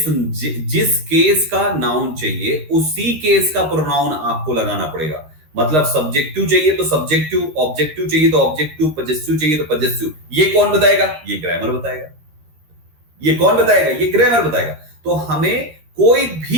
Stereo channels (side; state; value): left; late; 13 ms